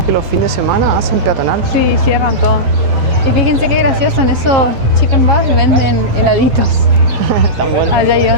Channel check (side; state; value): left; late; 7.7 ms